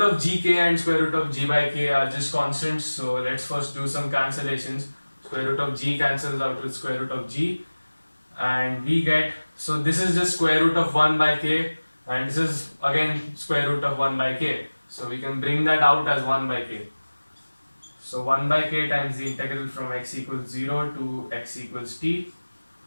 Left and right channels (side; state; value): both; inverted; correlation -1.00